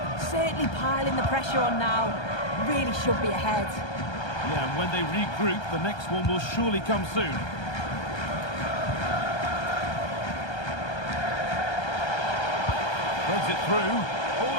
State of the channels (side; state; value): right; late; 1.3 ms